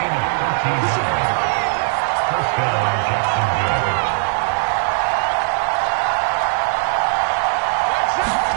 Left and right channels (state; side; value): silent; left; digital silence